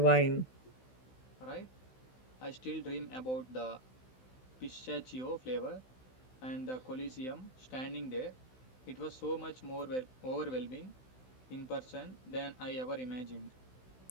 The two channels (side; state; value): right; late; 16 ms